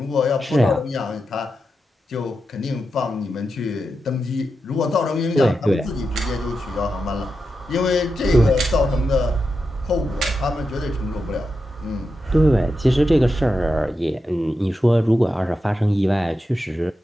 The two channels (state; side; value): normal; both; correlation 0.88